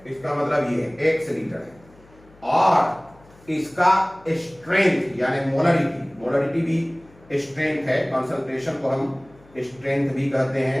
इसका मतलब ये है x लीटर है और इसका स्ट्रेंथ यानी मोलरिटी, मोलरिटी भी स्ट्रेंथ है, कंसंट्रेशन को हम स्ट्रेंथ भी कहते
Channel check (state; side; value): noise; left; hum, 27 dB below the sound